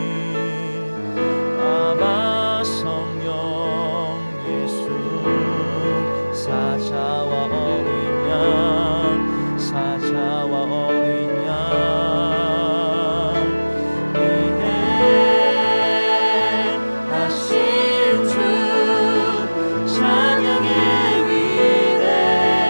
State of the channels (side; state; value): both; inverted; correlation -1.00